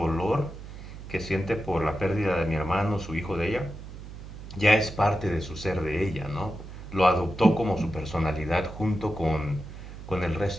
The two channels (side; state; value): right; noise; hum, 12 dB below the sound